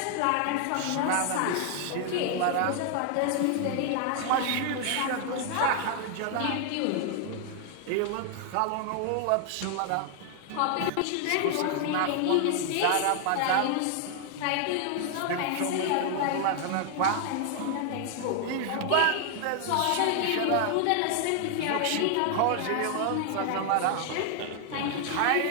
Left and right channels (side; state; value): both; different; correlation 0.00